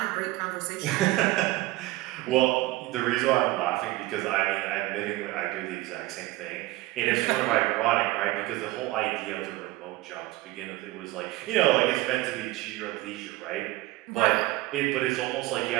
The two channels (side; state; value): left; quieter; 18.8 dB